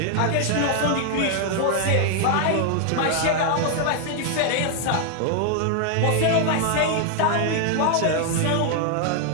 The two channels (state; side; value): different; both; correlation 0.00